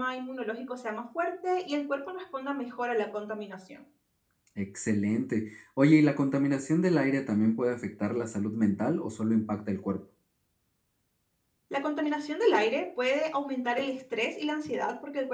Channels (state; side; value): identical; both; correlation 1.00